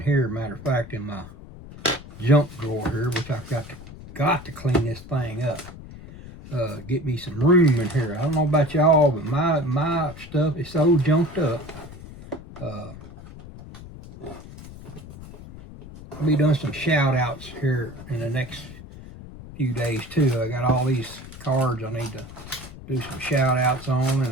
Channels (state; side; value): noise; left; rumble, 15 dB below the sound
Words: here, matter of fact, in my junk drawer here, which I've got to clean this thing up. Get me some room in here. I don't know about y'all, but my stuff is so junked up. I'll be doing some shout outs here in the next few days too. I got all these cards I need to do some shout outs on, and